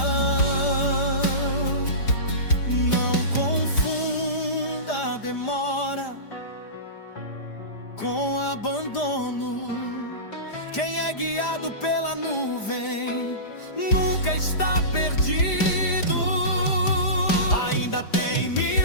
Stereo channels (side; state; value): right; late; 5.0 ms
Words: Não confunda a demora com abandono. Quem é guiado pela nuvem nunca está perdido. Ainda tem